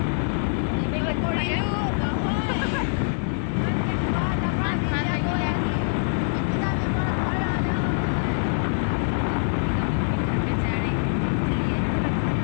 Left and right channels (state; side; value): silent; right; 62 dB below the other